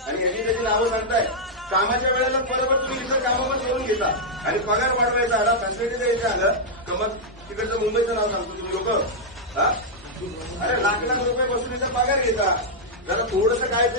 आणि यांनी त्याची नावं सांगताय, कामाच्या वेळेला बरोबर तुम्ही इतर कामावर सोडून घेता आणि पगार वाढवायचा आला, फॅसिलिटी द्यायचं आलं तर मग तिकडचं मुंबईचं नाव सांगतो तुम्ही लोक. अरे लाख रुपये वसुलीचा पगार घेता. जरा थोडंसं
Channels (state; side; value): normal; both; correlation -0.05